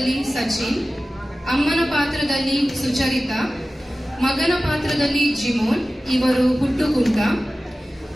ಸಚಿನ್, ಅಮ್ಮನ ಪಾತ್ರದಲ್ಲಿ ಸುಚರಿತಾ, ಮಗನ ಪಾತ್ರದಲ್ಲಿ ಜಿಮೋನ್, ಇವರು ಹುಟ್ಟುಕುಂಟ,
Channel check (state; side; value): normal; both; correlation 0.96